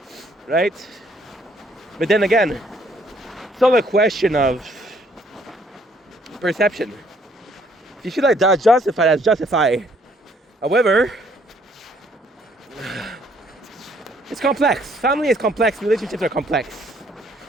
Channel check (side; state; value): both; normal; correlation 0.65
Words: right? But then again, it's all a question of perception. If you feel like that's justified, that's justified. However, it's complex. Family is complex. Relationships are complex.